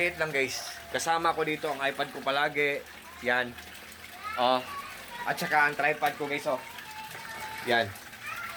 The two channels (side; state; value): both; identical; correlation 1.00